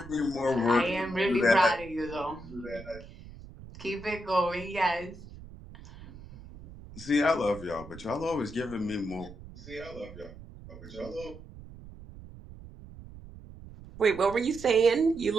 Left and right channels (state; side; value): noise; right; rumble, 17 dB below the sound